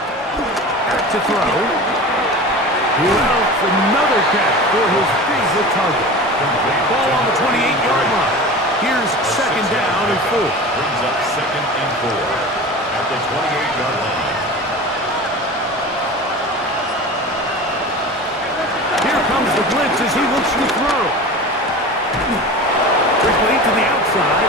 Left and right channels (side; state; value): both; normal; correlation 0.34